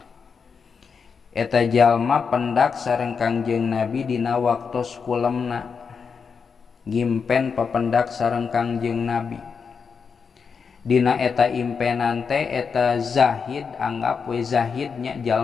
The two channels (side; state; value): right; quieter; 5.8 dB